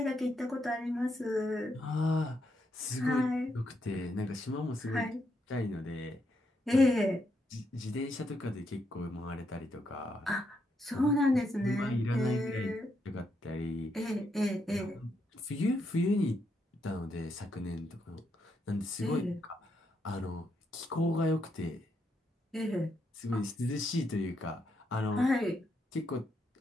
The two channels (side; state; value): both; normal; correlation 0.79